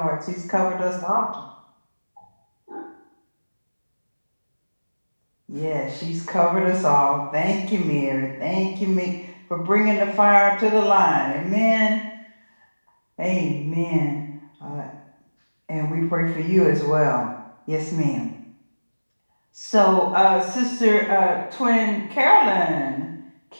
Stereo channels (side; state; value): both; inverted; correlation -1.00